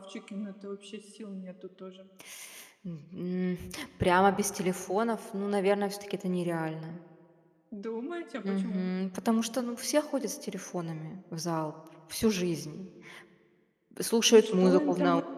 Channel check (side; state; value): both; identical; correlation 1.00